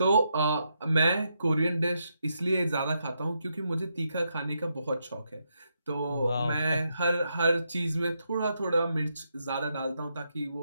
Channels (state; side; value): inverted; both; correlation -0.81